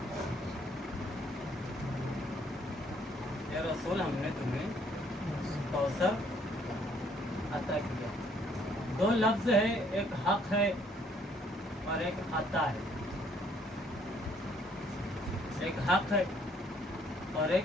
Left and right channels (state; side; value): normal; both; correlation 0.64